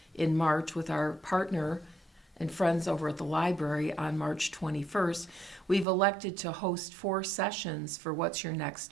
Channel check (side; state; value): left; drops out; at 5.9 s